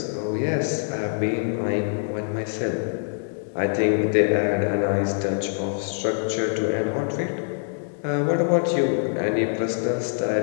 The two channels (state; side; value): silent; right; 61 dB below the other